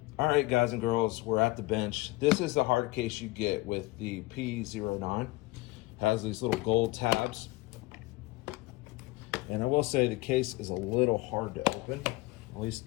All right, guys and girls, we're at the bench. This is the hard case you get with the P09. Has these little gold tabs. And I will say the case is a little hard to open, at least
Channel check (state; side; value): quieter; right; 21.0 dB